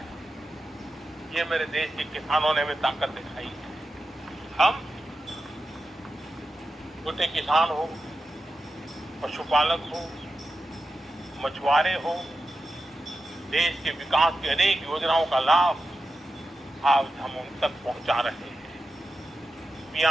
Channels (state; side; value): normal; both; correlation 0.90